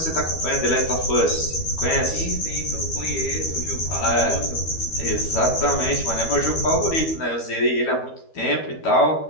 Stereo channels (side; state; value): right; late; 12 ms